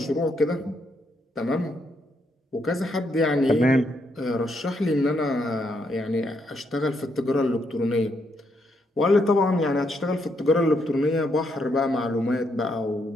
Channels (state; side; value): normal; both; correlation 0.77